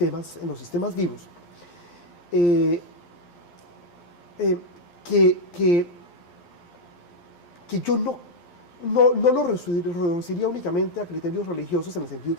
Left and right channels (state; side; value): late; right; 12 ms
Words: vivos, que yo no lo reduciría únicamente a criterios religiosos en el sentido